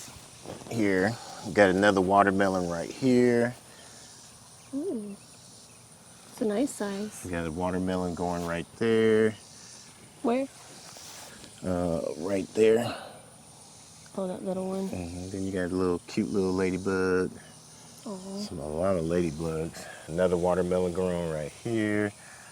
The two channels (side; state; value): both; identical; correlation 1.00